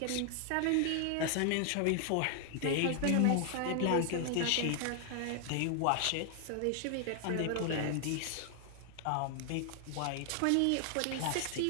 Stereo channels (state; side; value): different; both; correlation 0.00